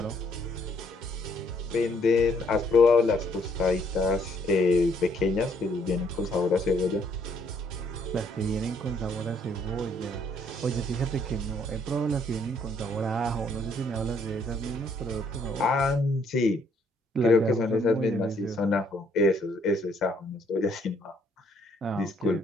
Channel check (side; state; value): both; normal; correlation 0.67